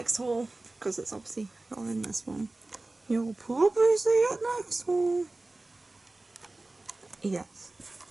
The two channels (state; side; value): quieter; left; 3.0 dB